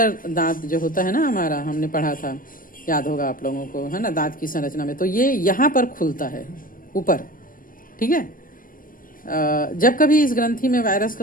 दांत जो होता है ना हमारा, हमने पढ़ा था, याद होगा आप लोगों को, है ना, दांत की संरचना में, तो ये यहाँ पर खुलता है ऊपर। ठीक है, जब कभी इस ग्रंथि में वायरस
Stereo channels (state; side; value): late; right; 0.40 ms